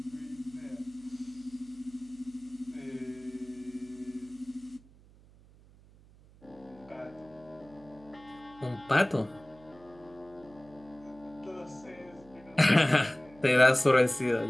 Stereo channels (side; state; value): right; noise; hum, 25 dB below the sound